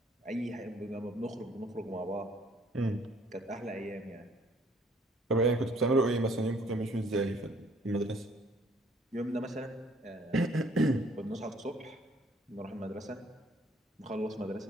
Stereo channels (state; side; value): normal; both; correlation 0.61